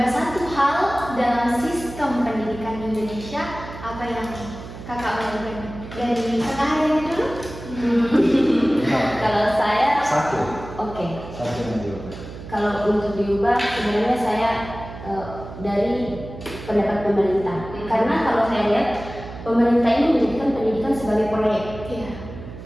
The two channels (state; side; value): noise; right; hum, 13 dB below the sound